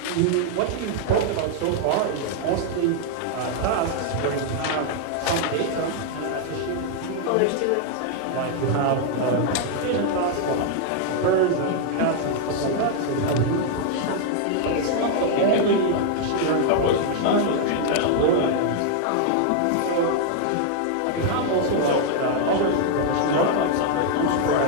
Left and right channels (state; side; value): different; both; correlation 0.00